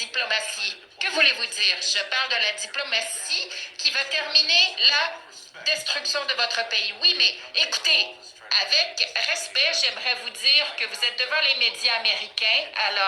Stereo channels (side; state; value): both; identical; correlation 1.00